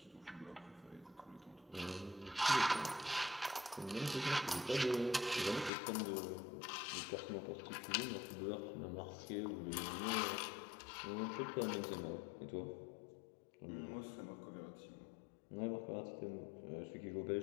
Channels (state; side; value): drops out; right; at 5.7 s